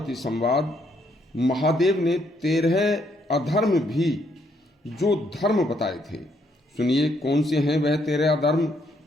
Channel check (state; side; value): normal; both; correlation 0.72